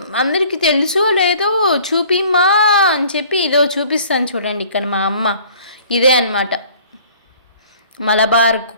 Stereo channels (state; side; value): inverted; both; correlation -0.52